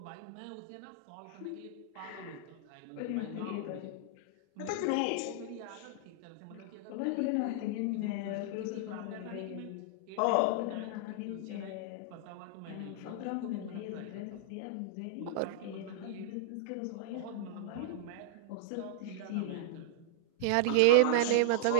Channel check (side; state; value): both; different; correlation -0.01